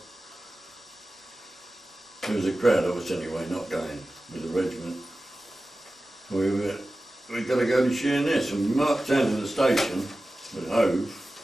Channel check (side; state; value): both; normal; correlation 0.95